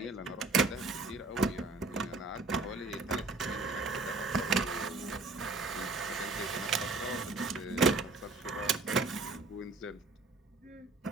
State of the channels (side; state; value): left; quieter; 3.4 dB